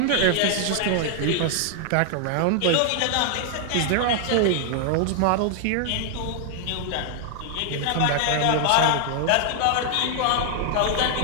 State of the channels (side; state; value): both; different; correlation 0.00